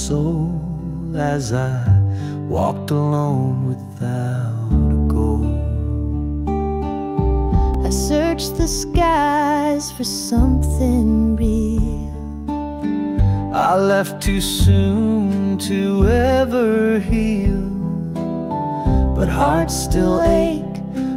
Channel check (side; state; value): both; identical; correlation 1.00